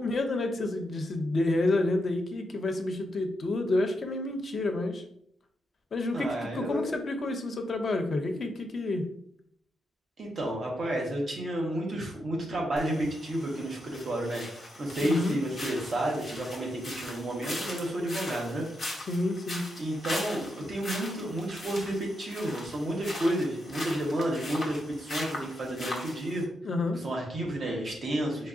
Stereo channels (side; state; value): both; normal; correlation 0.83